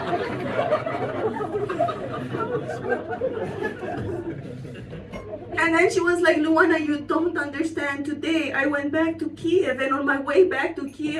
And then she was like, Luana, you don't understand. Today I went back to Kiev, and on my way back to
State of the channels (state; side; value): identical; both; correlation 1.00